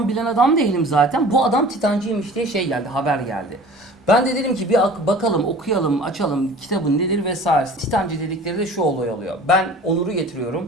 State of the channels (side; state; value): both; normal; correlation 0.44